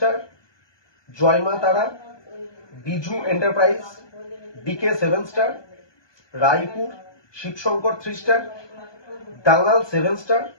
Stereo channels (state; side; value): late; right; 1.2 ms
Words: Joyma Tara, Biju enterprise, DK 7 star, Raipur Shivshankar 3 star, Dangal 7 star,